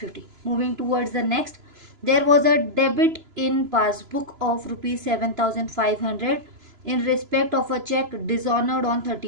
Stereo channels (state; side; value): late; left; 3.0 ms